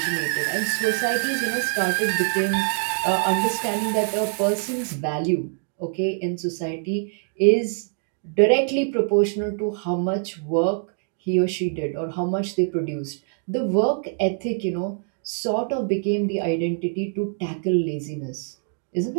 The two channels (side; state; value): left; silent; 57 dB below the other